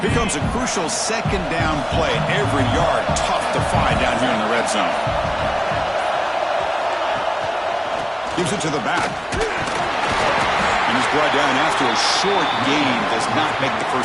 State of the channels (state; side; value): identical; both; correlation 1.00